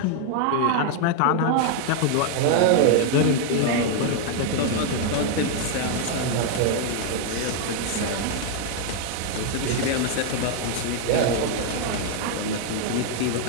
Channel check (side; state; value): both; different; correlation 0.00